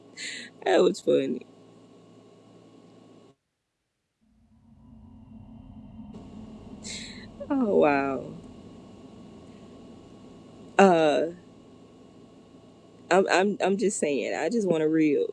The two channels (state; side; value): identical; both; correlation 1.00